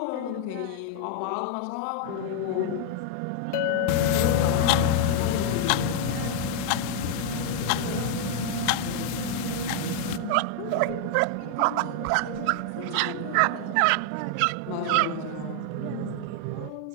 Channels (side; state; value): both; different; correlation 0.00